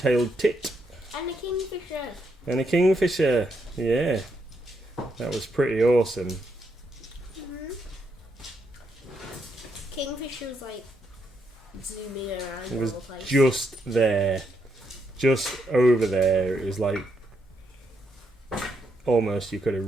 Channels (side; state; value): both; normal; correlation 0.78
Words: tit. And a kingfisher. And a kingfisher, yeah. That was pretty awesome. Kingfisher was like zooming around It was all the place. just there. Just over there. It was like almost you could have